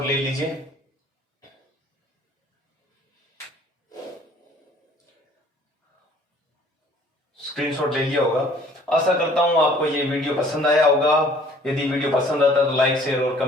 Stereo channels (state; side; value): normal; both; correlation 0.55